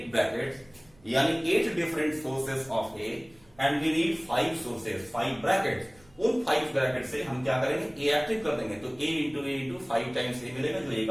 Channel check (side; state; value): right; noise; rumble, 29 dB below the sound